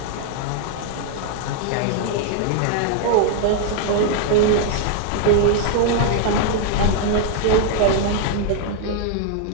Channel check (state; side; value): different; both; correlation 0.00